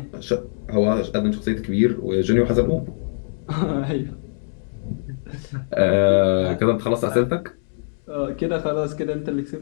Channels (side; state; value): right; silent; digital silence